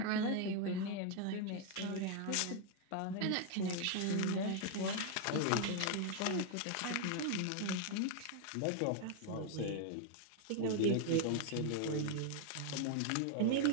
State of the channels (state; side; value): different; both; correlation 0.00